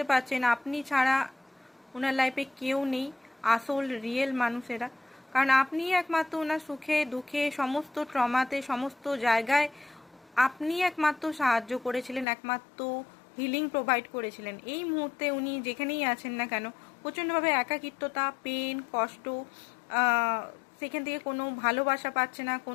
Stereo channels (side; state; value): right; drops out; at 12.2 s